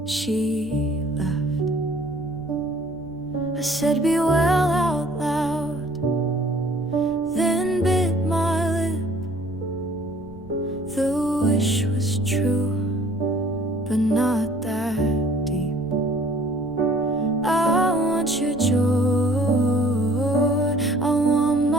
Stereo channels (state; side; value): noise; right; rumble, 21 dB below the sound